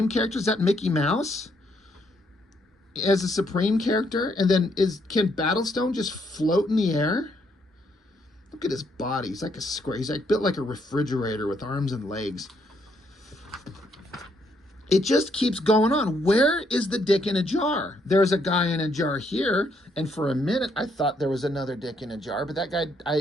characters? Is that Mickey Mouse as a Supreme character? And then can Battlestone just float in the air? Look at his body. He's like a square. He's like built like a refrigerator with arms and legs. It just keeps going on. Where is the dick in a jar? There's a guy in a jar here, and for a minute I thought there was another dick in a jar, but that guy,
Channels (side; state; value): both; normal; correlation 0.72